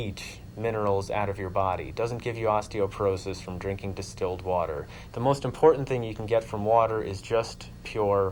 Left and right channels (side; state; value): both; identical; correlation 1.00